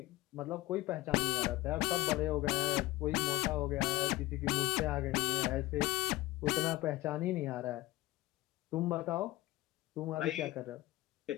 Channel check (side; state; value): right; quieter; 18.1 dB